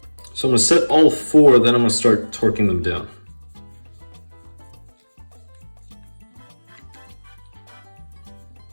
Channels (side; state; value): both; inverted; correlation -1.00